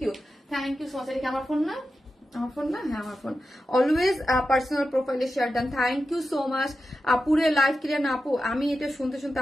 you so much. এটা কি আমার ফোন না? আমার ফোন না? হ্যাঁ আমার ফোন। অলওয়েজ পার্সোনাল প্রোফাইলে share done, thank you so much আপুরে। লাইভ ক্লিয়ার না আপু? আমি এটা শুনতে শুনতে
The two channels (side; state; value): both; normal; correlation 0.91